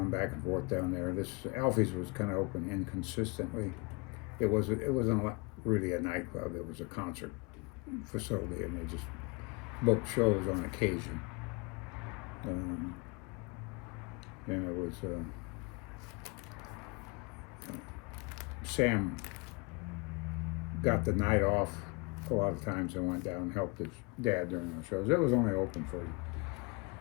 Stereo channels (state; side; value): quieter; right; 28.9 dB